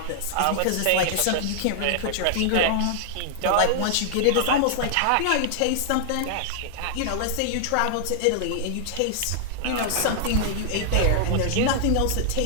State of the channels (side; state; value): both; different; correlation -0.01